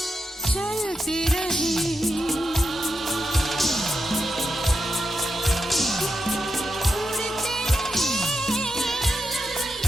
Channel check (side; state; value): both; normal; correlation 0.87